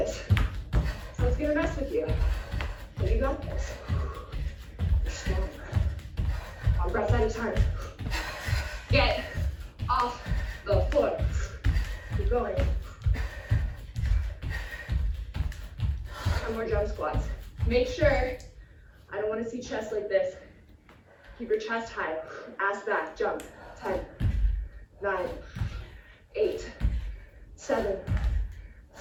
So it's gonna mess with you. But you got this. You're strong. One breath at a time. Get off the floor. Keep going. 10 more jump squats. Make sure, I don't want to see chest like this. Keep your chest high. Ass back, jump. 10, 9, 8, 7,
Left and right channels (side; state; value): both; identical; correlation 1.00